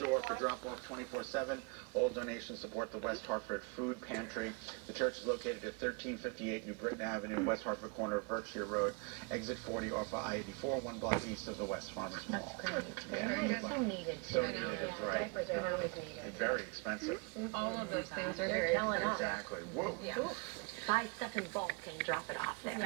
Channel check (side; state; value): left; quieter; 31.8 dB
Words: door for drop-off 24/7. All donations support the West Hartford Food Pantry. The church is located at 1358 New Britain Avenue, West Hartford corner of Berkshire Road, exit 40 off of I-84, 1 block east of the West Farmers Mall. That's great. Yeah, so needed. So needed, right. Diapers are always needed. Very expensive. All of those things are very expensive. Exactly. Whoa. Yeah. Buy stuff in bulk and drop it off there.